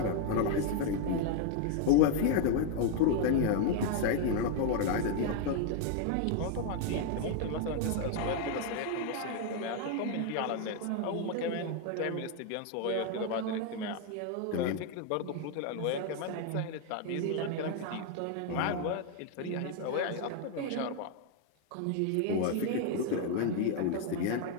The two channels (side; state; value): both; different; correlation 0.00